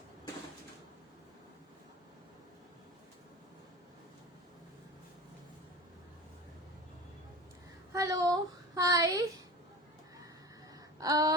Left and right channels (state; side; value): normal; both; correlation 0.32